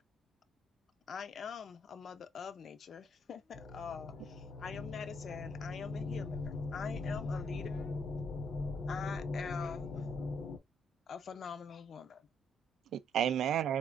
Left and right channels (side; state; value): both; normal; correlation 0.69